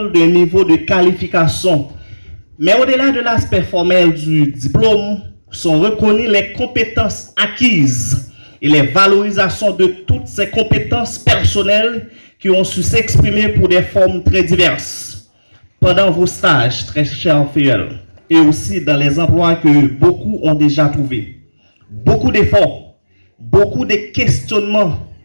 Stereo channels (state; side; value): inverted; both; correlation -1.00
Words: d'un niveau de qualification. Mais au-delà de l'aspect formel du diplôme, sont reconnues les compétences acquises et les valorisations de toutes ces compétences personnelles qui ont su s'exprimer pour des formes très diverses. Pendant vos stages, très chers filles, et aussi dans les emplois que beaucoup ont déjà trouvés. Beaucoup d'efforts, beaucoup de questionnements,